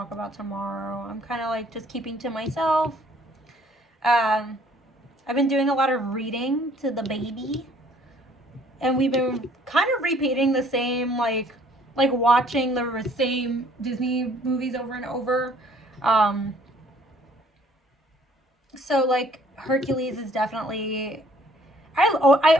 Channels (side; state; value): both; normal; correlation 0.59